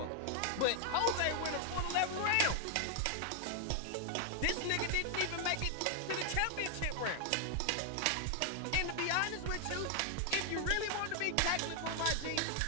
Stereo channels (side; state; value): both; different; correlation 0.00